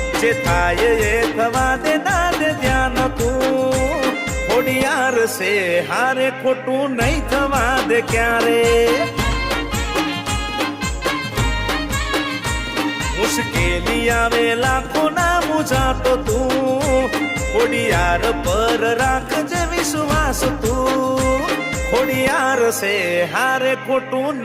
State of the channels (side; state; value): both; identical; correlation 1.00